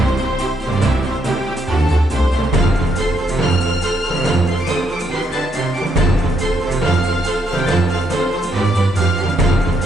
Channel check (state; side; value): normal; both; correlation 0.75